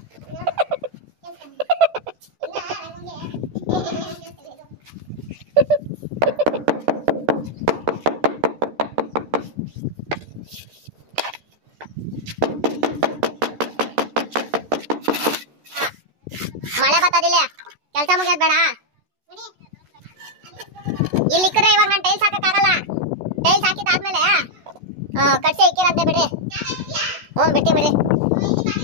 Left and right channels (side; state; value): left; late; 14 ms